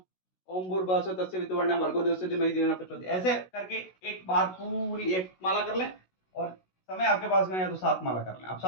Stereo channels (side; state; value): right; late; 16 ms